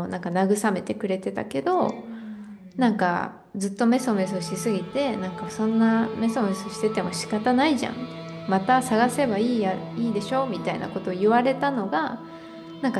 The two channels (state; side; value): identical; both; correlation 1.00